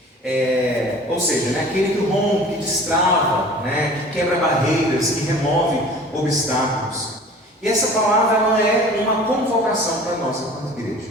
Ou seja, né, aquele que rompe, que destrava, né, que quebra barreiras, que remove obstáculos. E essa palavra ela é uma convocação para nós enquanto igreja.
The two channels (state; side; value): normal; both; correlation 0.44